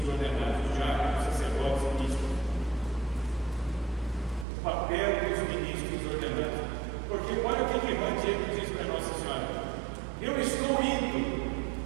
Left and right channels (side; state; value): left; drops out; at 4.5 s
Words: ordenados, diáconos, sacerdotes e ministros. O papel dos ministros ordenados. Porque olha o que Juan Diego diz para Nossa Senhora: eu estou indo